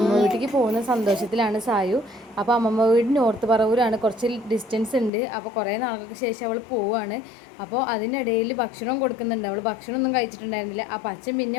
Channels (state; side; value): drops out; right; at 5.1 s